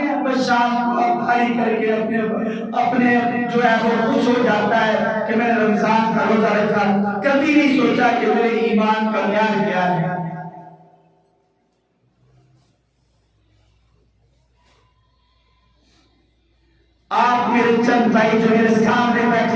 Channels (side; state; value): both; identical; correlation 1.00